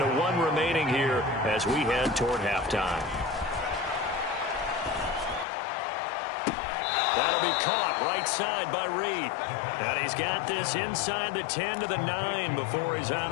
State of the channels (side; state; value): right; drops out; at 5.5 s